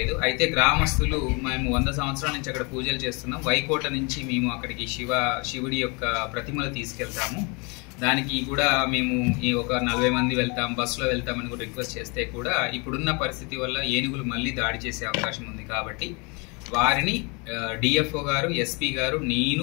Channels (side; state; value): right; quieter; 30.8 dB